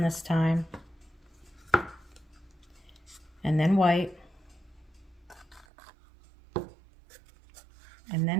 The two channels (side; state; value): left; drops out; at 5.7 s